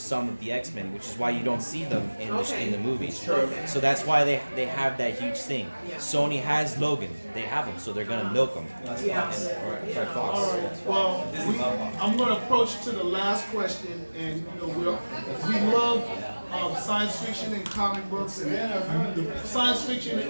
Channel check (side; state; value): both; inverted; correlation -1.00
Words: of the X-Men, which is why you don't see them in the movies. True. So that's why they have that huge thing. Sony has Logan. They have him, so they're gonna milk him. Yeah. Or Fox. All right. Well, I'm going to approach to the last question, and we love science fiction and comic books, and the science fiction